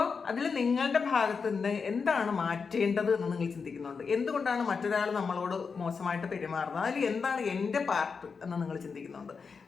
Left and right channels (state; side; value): quieter; right; 5.4 dB